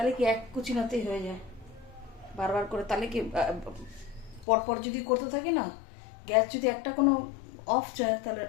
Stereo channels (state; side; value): drops out; right; at 4.5 s